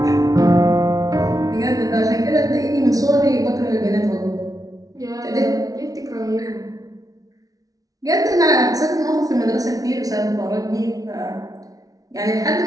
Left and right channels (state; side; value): late; left; 0.18 ms